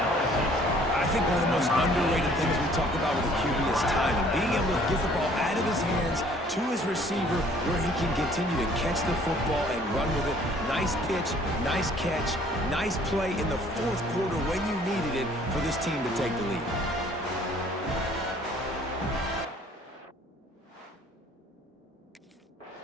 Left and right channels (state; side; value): normal; both; correlation 0.57